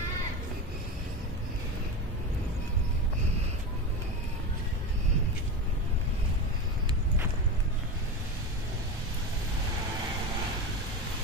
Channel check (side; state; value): both; normal; correlation 0.23